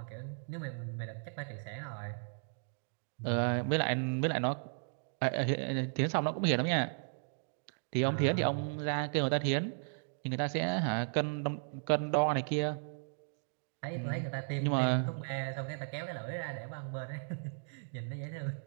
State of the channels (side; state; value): left; silent; digital silence